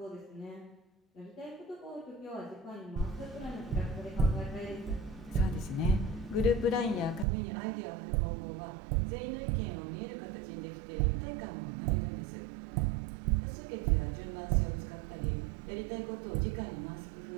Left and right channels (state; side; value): drops out; left; at 7.2 s